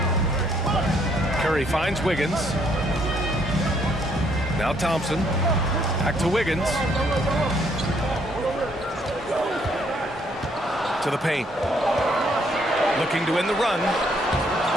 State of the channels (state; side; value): normal; both; correlation 0.68